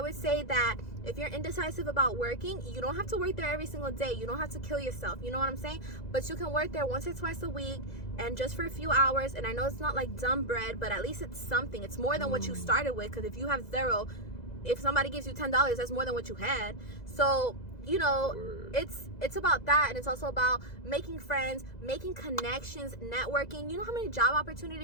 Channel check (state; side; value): late; right; 2.0 ms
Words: would say that if you're indecisive about working, you don't have to work there every single day. You don't have to kill yourself. You know what I'm saying? But you can work there once or twice a week, and just for a few hours. And I know it's not like dumb bread, but at least it's something. It's more than what you started with, because if you have $0, if somebody gives you $10, that's more than what you had. So, you know, it's about that, and it's also about making friends, making connections, networking. You know how many job